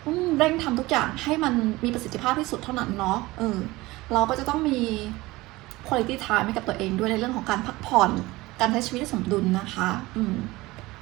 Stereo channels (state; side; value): quieter; left; 20.1 dB